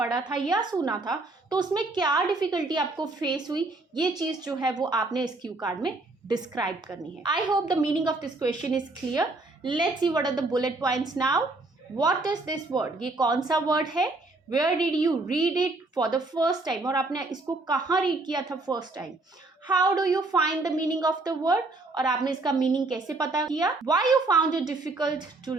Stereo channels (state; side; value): quieter; left; 3.2 dB